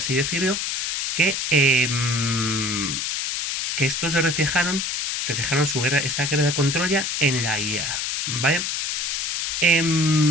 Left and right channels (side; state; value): left; noise; hiss, 1 dB below the sound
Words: decirlo, que estos reflejaron esta guerra con Troya en la Ilíada. ¿Vale?